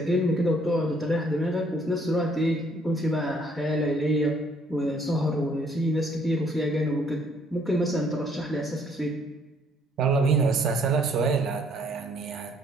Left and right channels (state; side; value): normal; both; correlation 0.65